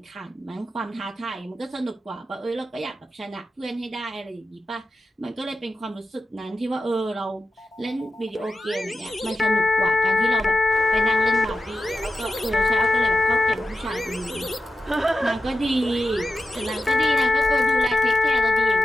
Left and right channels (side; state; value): both; normal; correlation 0.91